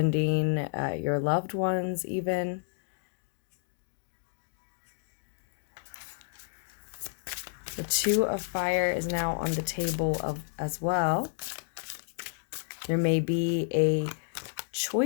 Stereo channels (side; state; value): right; silent; digital silence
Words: your loved ones even. The Two of Fire is now on the table as well. There may be a